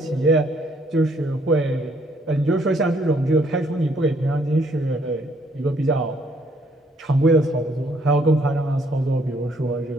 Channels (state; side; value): normal; both; correlation 0.67